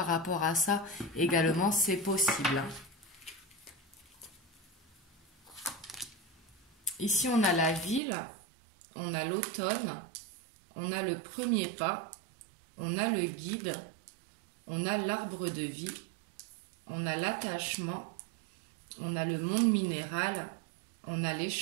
rapport à ça. Également, c'est possible. Ici, on a la ville, on a l'automne, on a le premier pas, on a le guide, on a l'arbre de vie, on a l'attachement, on a le monde minéral, on a les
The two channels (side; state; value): left; drops out; at 8.0 s